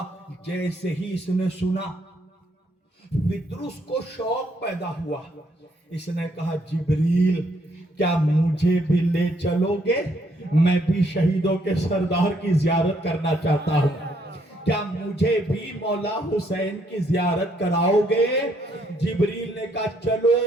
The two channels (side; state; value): both; normal; correlation 0.71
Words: جیسے ہی اس نے سنا، پطرس کو شوق پیدا ہوا. اس نے کہا جبریل کیا مجھے بھی لے چلو گے؟ میں بھی شہیدوں کے سردار کی زیارت کرنا چاہتا ہوں. کیا مجھے بھی مولا حسین کی زیارت کراؤ گے؟ جبریل نے کہا چلو.